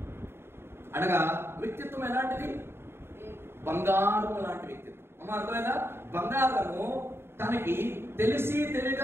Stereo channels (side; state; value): left; late; 0.11 ms